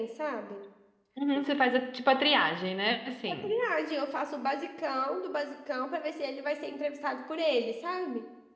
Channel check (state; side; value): identical; both; correlation 1.00